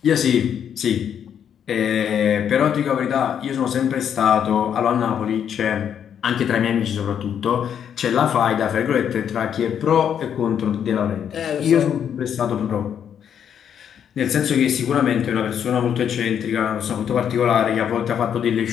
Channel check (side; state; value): right; quieter; 8.6 dB